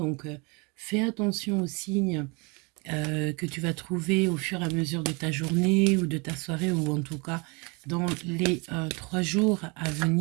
fais attention aux signes que tu vas trouver au fur et à mesure de ta journée ou de ta soirée, ou en tout cas dans les 3 jours à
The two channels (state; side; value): quieter; left; 29.9 dB